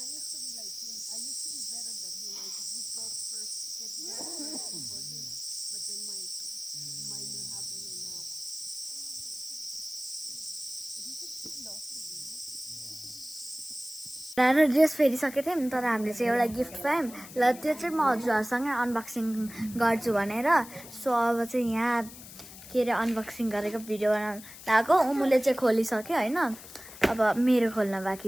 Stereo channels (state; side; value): noise; left; hiss, 15 dB below the sound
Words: र ड्रेस फेरिसकेको थियौँ तर हामीले चाहिँ एउटा गिफ्ट पायौँ ल त्यो चाहिँ म हजुरहरूसँगै अनबक्सिङ गर्छु भनेर सो अब चाहिँ यहाँ के अरे अनबक्सिङ गरेको भिडियो बनाउनु लगाएको उमुले चाहिँ खोलिसक्यो होइन अब मेरो खोल्न